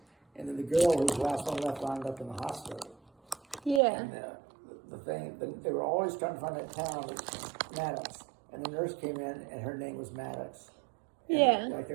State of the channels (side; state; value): left; drops out; at 3.8 s